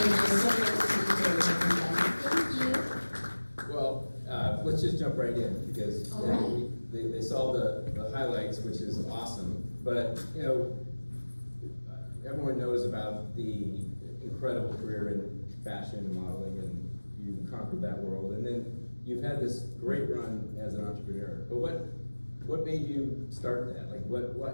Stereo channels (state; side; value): inverted; both; correlation -1.00